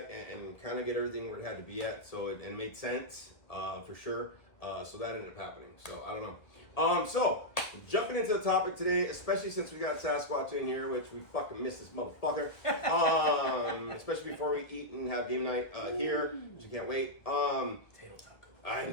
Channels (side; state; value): right; late; 1.5 ms